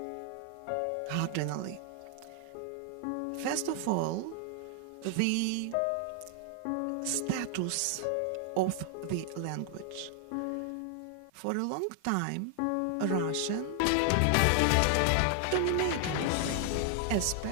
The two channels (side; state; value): both; different; correlation 0.00